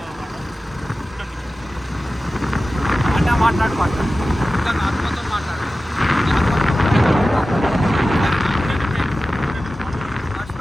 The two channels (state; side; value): normal; both; correlation 0.95